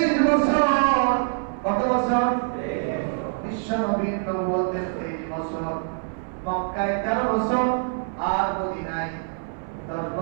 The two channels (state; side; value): silent; left; 58 dB below the other